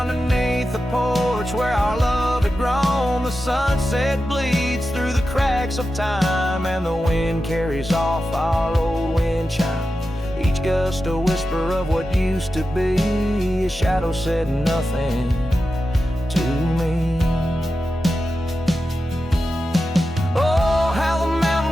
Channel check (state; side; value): normal; both; correlation 0.91